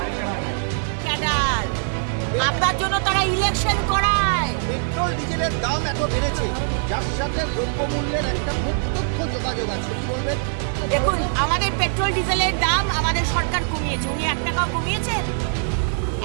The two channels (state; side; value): silent; left; digital silence